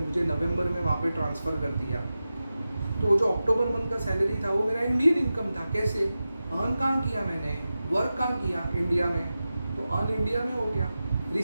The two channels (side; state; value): both; inverted; correlation -0.93